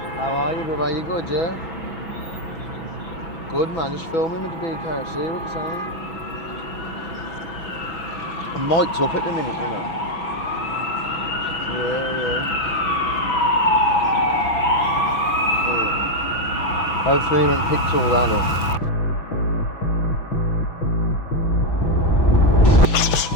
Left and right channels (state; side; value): late; right; 6.1 ms